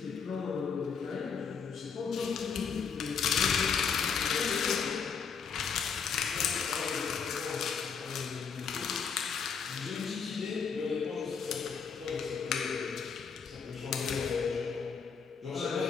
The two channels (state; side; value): quieter; right; 6.2 dB